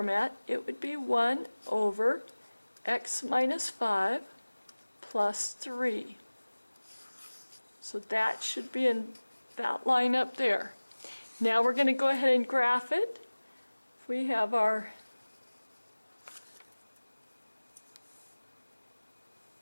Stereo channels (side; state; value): both; inverted; correlation -1.00